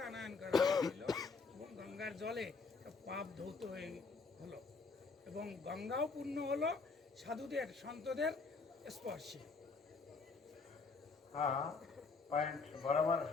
আনয়ন করা হয়েছিল এবং গঙ্গার জলে পাপ ধৌত হয়ে হলো এবং গঙ্গাও পূর্ণ হলো সাধুদের সন্তদের স্পর্শে। हाँ, पॉइंट बराबर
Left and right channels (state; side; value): quieter; right; 4.4 dB